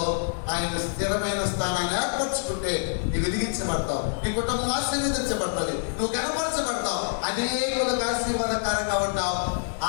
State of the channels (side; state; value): right; silent; 60 dB below the other